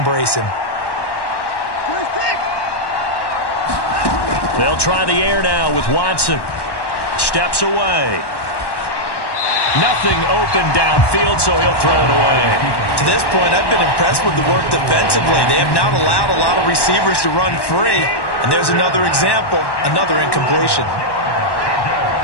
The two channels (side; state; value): right; late; 1.1 ms